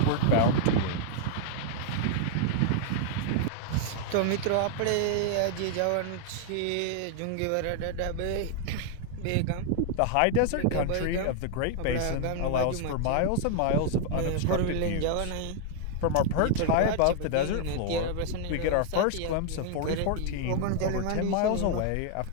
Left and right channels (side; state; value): both; different; correlation 0.00